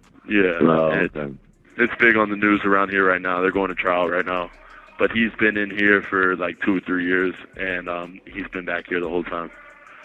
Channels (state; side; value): identical; both; correlation 1.00